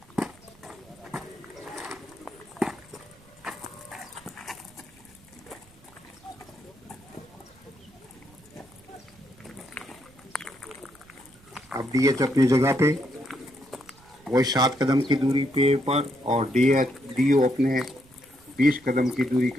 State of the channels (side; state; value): right; noise; rumble, 27 dB below the sound